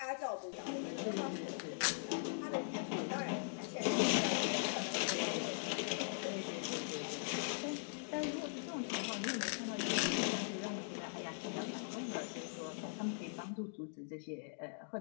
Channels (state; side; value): silent; right; digital silence